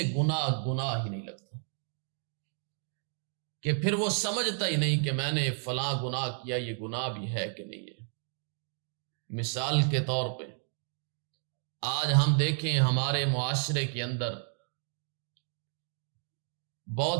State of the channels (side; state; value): left; silent; 56 dB below the other